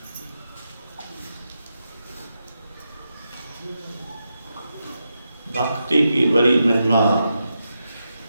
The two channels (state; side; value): inverted; both; correlation -0.87